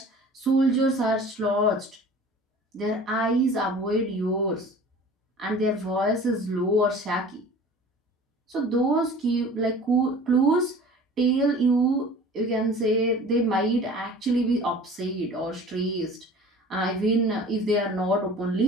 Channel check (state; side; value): normal; both; correlation 0.44